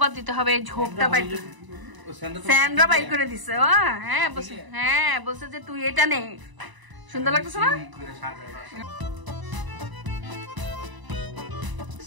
দিতে হবে। এই ঝোপটা বাইর স্যান্ড্রা বাইর করে দিছে। ও হ্যাঁ বলছে, হ্যাঁ বলছে যে তুই এটা নে, সুন্দর লাগতেছে না?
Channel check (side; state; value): left; late; 1.0 ms